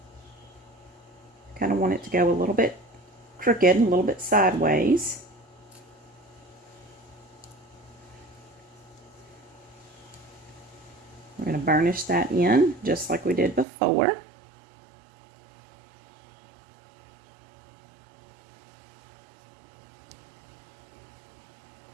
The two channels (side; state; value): left; drops out; at 13.7 s